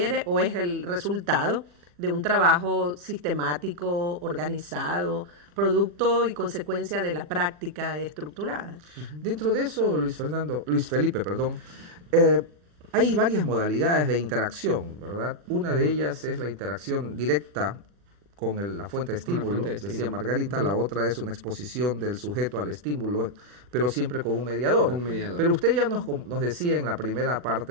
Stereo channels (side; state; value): left; late; 40 ms